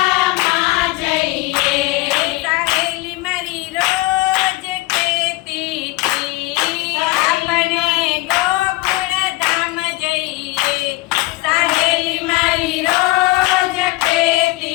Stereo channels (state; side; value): quieter; right; 20.6 dB